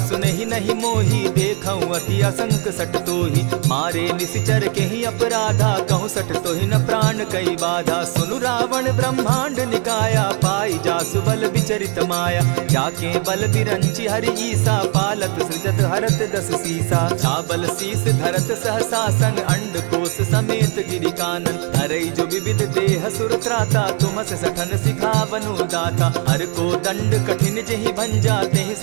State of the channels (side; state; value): left; quieter; 34.9 dB